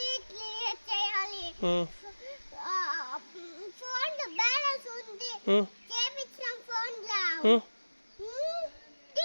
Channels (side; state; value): both; inverted; correlation -1.00